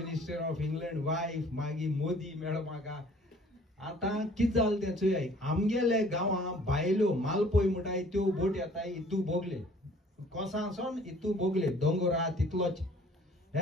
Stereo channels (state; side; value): normal; both; correlation 0.54